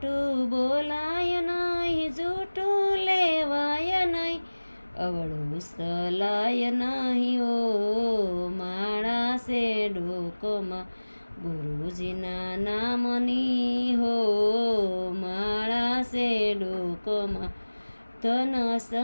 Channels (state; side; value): inverted; both; correlation -1.00